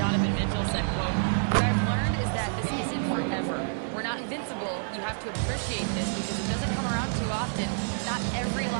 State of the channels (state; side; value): silent; left; 59 dB below the other